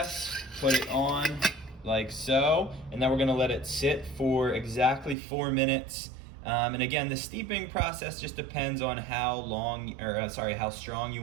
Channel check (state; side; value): drops out; left; at 5.2 s